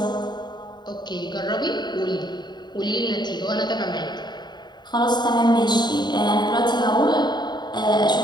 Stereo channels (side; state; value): right; late; 0.21 ms